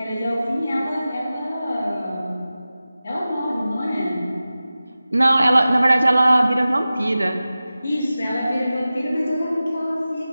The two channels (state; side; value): inverted; both; correlation -0.95